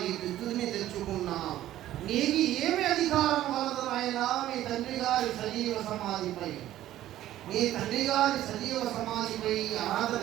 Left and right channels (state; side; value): quieter; left; 13.5 dB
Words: ఈ విద్యుత్ని తెచ్చుకున్నావు. నీకు ఏమి అధికారం కలదు నాయనా మీ తండ్రి గారి సజీవ సమాధిపై? మీ తండ్రి గారి సజీవ సమాధిపై అర్హత